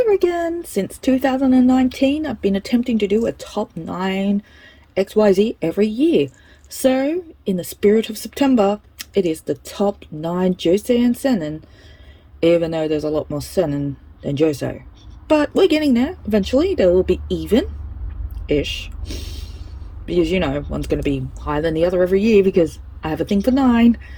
again! Since 2019, I've been attempting to do a top 9 XYZ every year. So, in the spirit of September, it is the top 9 Josei and Seinen, even though there's a lot more Seinen than Josei. But we're getting there. Eventually, they will be even-ish. Because, one's going to be higher than the other every year because I have a thing for 9.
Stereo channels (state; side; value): identical; both; correlation 1.00